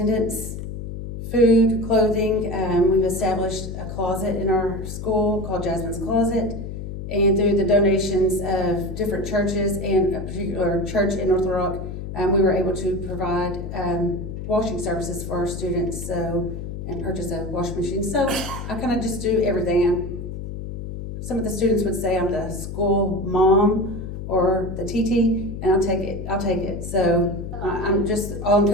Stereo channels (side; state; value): left; noise; hum, 8 dB below the sound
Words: food, clothing. We've established a closet in our school called Jasmine's Closet. And through the donations of different churches and a particular church in North Little Rock, we were able to provide washing services for our students, and purchase a washing machine. So I kind of just do everything. Some of the students would say I'm the school mom or the TT, and I'll take it. So I'm just